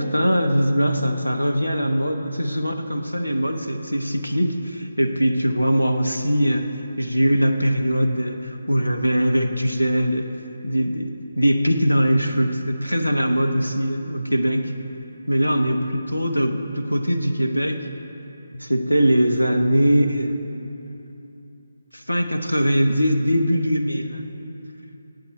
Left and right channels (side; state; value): both; inverted; correlation -0.94